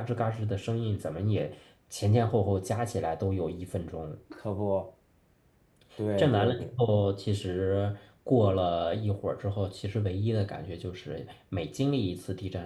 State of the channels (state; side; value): identical; both; correlation 1.00